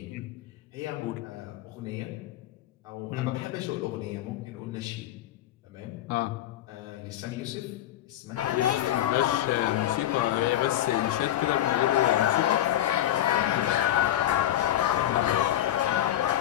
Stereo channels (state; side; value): quieter; right; 12.9 dB